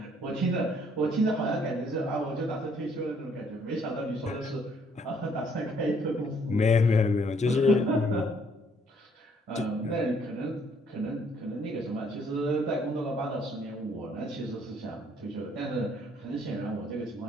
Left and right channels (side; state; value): both; normal; correlation 0.65